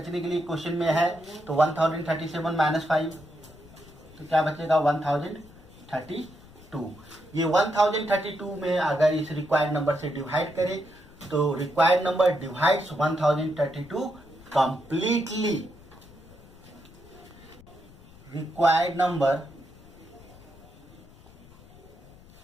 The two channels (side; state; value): left; noise; rumble, 22 dB below the sound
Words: के लिए क्वेश्चन में है, तो 1037 -5 तो क्या बचेगा 1032। ये 1032 में अगर इस रिक्वायर्ड नंबर से डिवाइड करें तो required number divides 1032 completely. Required number